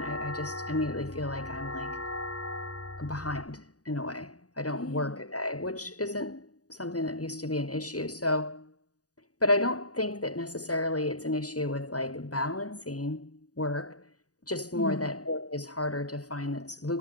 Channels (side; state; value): right; late; 0.67 ms